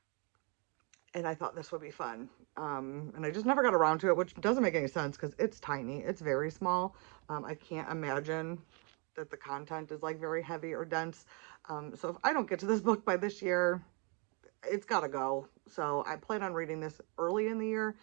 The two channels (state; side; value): quieter; left; 34.4 dB